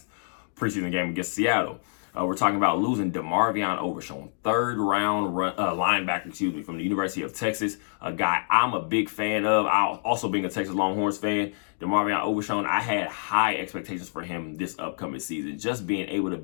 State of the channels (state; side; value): silent; right; digital silence